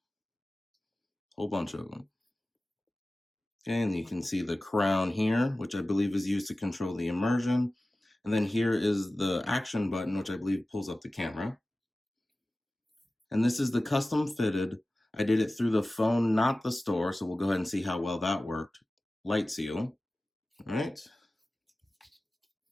Whole bunch of them. Okay, and you can see the crown here, which I believe is used to control the immersion. And then here is the action button, which I believe pulls up the camera. And this is the custom fitted. I did it through the phone, not the store, so we'll go ahead and see how well that worked. Light seal. All right.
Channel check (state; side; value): normal; both; correlation 0.96